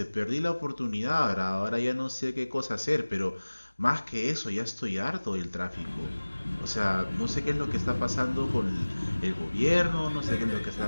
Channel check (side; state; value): both; inverted; correlation -1.00